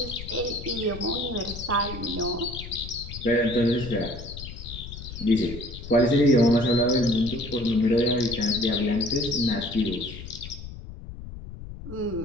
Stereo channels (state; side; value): noise; left; rumble, 11 dB below the sound